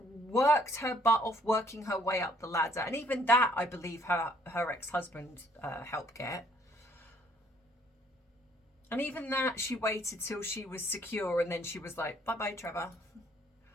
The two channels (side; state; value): both; normal; correlation 0.64